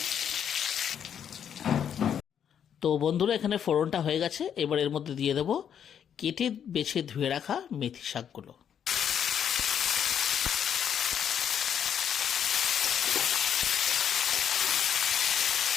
তো বন্ধুরা, এখানে ফোড়নটা হয়ে গেছে। এবার এর মধ্যে দিয়ে দেবো কেটে বেছে ধুয়ে রাখা মেথি শাকগুলো।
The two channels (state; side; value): quieter; right; 8.6 dB